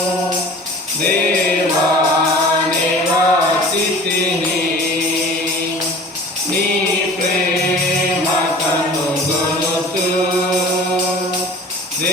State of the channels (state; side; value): normal; both; correlation 0.43